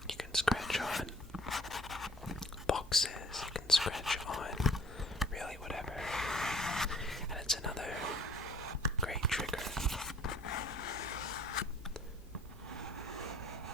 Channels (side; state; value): both; normal; correlation 0.53